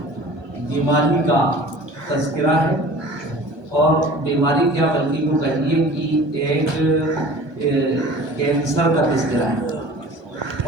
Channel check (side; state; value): left; late; 1.2 ms